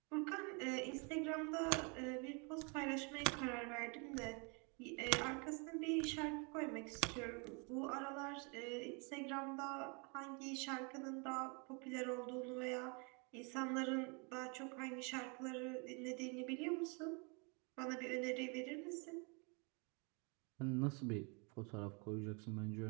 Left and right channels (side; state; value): left; quieter; 33.7 dB